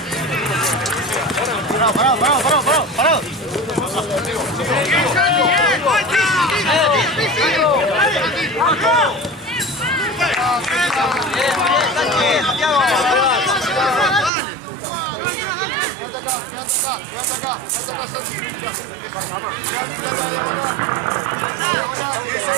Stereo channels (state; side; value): drops out; left; at 14.3 s